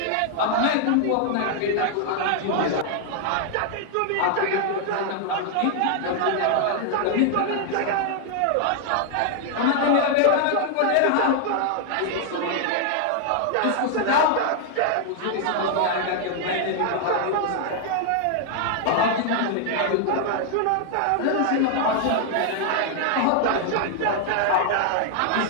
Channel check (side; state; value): both; different; correlation 0.00